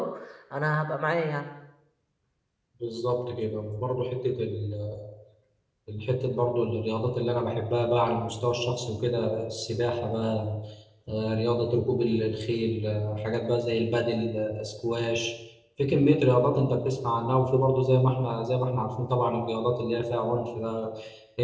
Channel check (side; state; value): both; identical; correlation 1.00